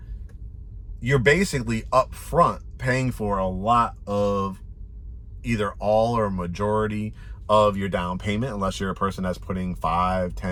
you're basically upfront paying for a lot of either all or majority of your down payment, unless you're a person that's putting 5,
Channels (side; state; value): both; identical; correlation 1.00